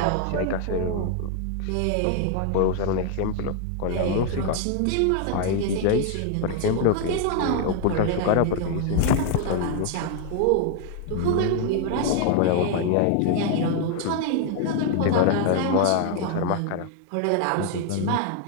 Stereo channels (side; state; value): both; different; correlation 0.00